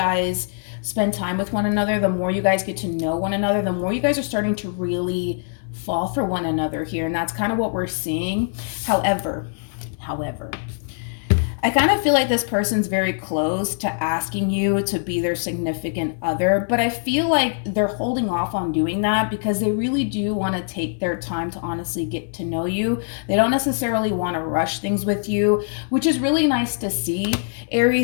spend time with one another, the more you guys get to know one another, the more you guys are starting to really fall for one another here. And that's kind of what we're seeing. However, I kind of feel like this person's very close to asking you to be their significant other, but I feel like they're holding off on doing that because they really do want to take their time to honestly get to know you. They don't necessarily want to rush things with you, which is really nice to see,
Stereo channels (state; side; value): silent; right; 60 dB below the other